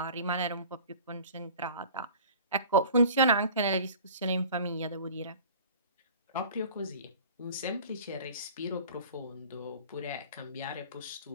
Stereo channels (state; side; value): inverted; both; correlation -0.43